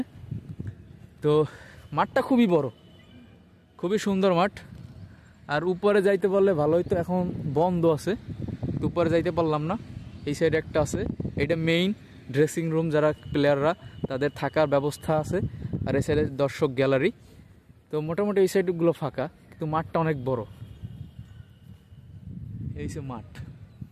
তো মাঠটা খুবই বড়, খুবই সুন্দর মাঠ। আর উপরে যাইতে পারলে ভালো হইতো, এখন বন্ধ আছে, তো উপরে যাইতে পারলাম না। এই সাইডে একটা আছে, এটা মেইন ড্রেসিং রুম, যারা প্লেয়াররা তাদের থাকার ব্যবস্থা আছে। আর এই সাইডে দর্শক গ্যালারি। তো মোটামুটি এই সাইডগুলো ফাঁকা, কিন্তু মাঠটা অনেক বড়। এই সে মাঠ।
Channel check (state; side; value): identical; both; correlation 1.00